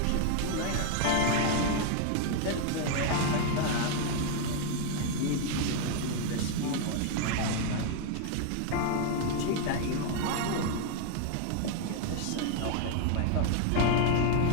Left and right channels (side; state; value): both; different; correlation 0.00